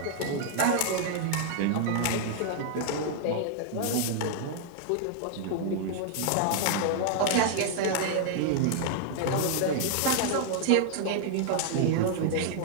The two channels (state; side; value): different; both; correlation 0.00